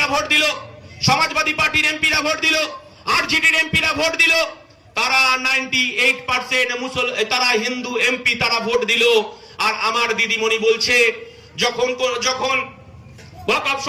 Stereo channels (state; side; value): identical; both; correlation 1.00